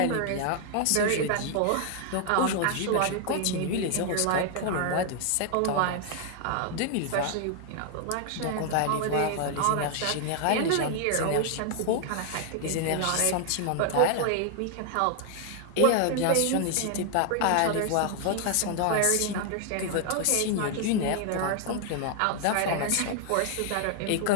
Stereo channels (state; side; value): different; both; correlation 0.00